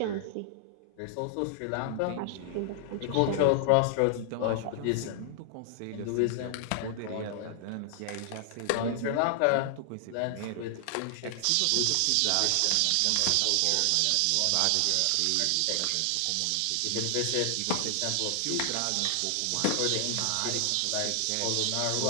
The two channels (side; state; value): both; different; correlation 0.00